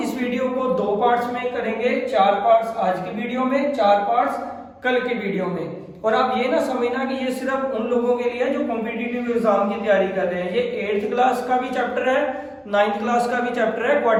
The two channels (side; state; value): both; identical; correlation 1.00